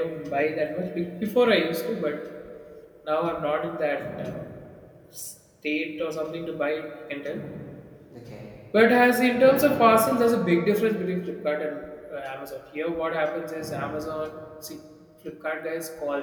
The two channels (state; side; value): identical; both; correlation 1.00